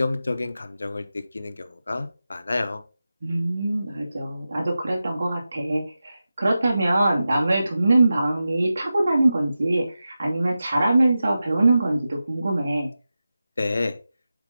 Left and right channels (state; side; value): inverted; both; correlation -0.93